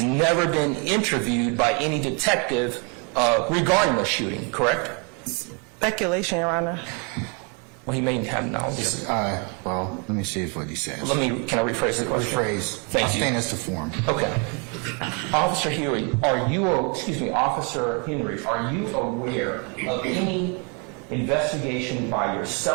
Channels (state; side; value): quieter; left; 35.2 dB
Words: never been interviewed by any detective regarding the shooting, correct? Speculation, Your Honor. Well, he may have knowledge. Well, let me see what he says. Can I rephrase the question? Rephrase. Thank I'll you. stand as to form. Okay. Officer Huey, Officer Henry, are you aware of any investigation by